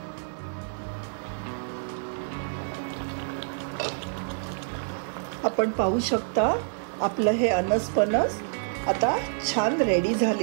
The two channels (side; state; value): left; silent; digital silence